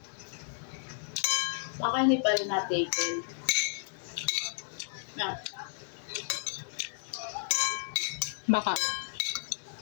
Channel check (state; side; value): silent; right; 56 dB below the other